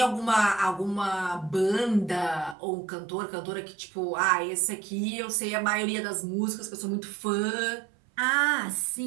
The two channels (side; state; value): left; drops out; at 2.6 s